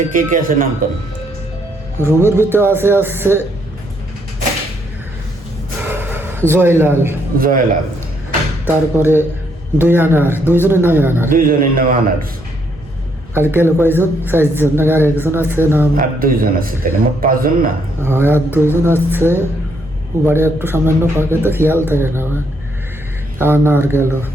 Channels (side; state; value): both; normal; correlation 0.72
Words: কে কে আছে নাম করেন? রুমের ভিতরে আছে জয়লাল, তারপরে দুইজনের নাম আনার। আর গেল কয়জন? 4জন। আর একজন আছে নাম, আর 2জন আছে, তাহলে মোট 5 জন না? হ্যাঁ, আর 2জন আছে। বাড়ি একটু সামান্য ফাঁকে তো খেয়াল থাকে না। আনার গেল।